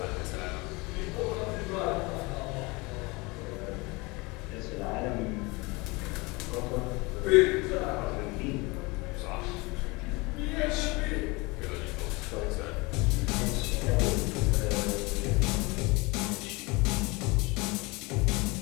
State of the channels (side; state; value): right; quieter; 25.3 dB